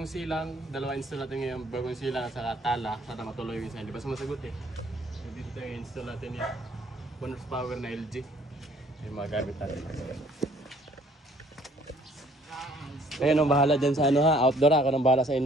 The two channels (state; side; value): normal; both; correlation 0.60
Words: silang. Dalawa install natin ngayon, bagong silang at saka tala. Sana matuloy yung isa, hindi pa sumasagot eh. So dito tayo install natin yung 1 horsepower na LG. Yung mga gamit natin. Kayo nang bahala dyan sa ano ha, outdoor ha. Ako nang bahala sa